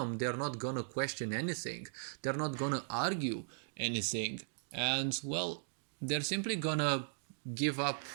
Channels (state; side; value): silent; left; digital silence